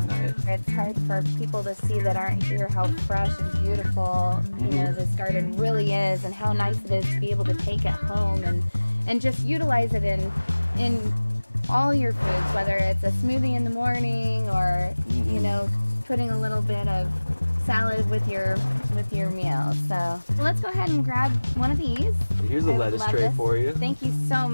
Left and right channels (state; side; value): inverted; both; correlation -1.00